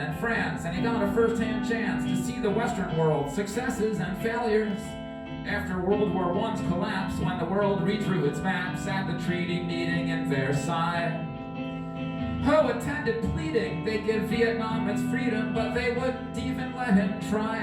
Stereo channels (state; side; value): identical; both; correlation 1.00